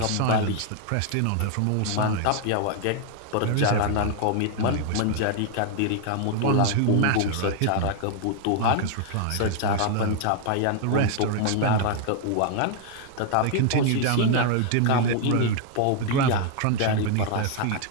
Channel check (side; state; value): both; different; correlation 0.00